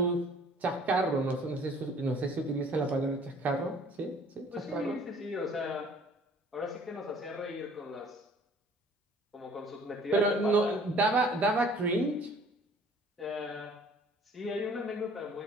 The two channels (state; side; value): normal; both; correlation 0.54